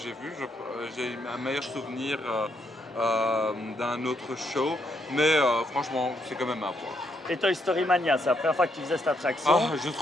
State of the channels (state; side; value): normal; both; correlation 0.76